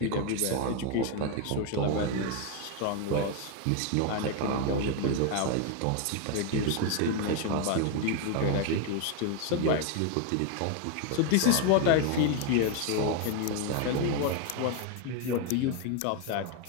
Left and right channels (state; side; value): different; both; correlation 0.01